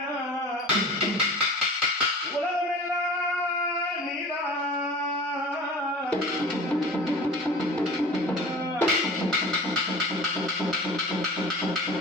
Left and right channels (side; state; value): both; normal; correlation 0.39